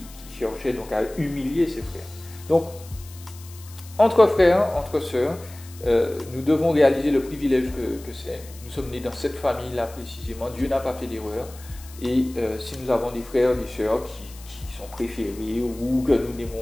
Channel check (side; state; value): left; noise; hiss, 20 dB below the sound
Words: cherchait donc à humilier ses frères. Donc, entre frères, entre sœurs, nous devons réaliser le privilège que c'est. Nous sommes nés dans cette famille-là précisément. Dieu n'a pas fait d'erreur. Et si nous avons des frères et des sœurs qui sont préférés ou que nous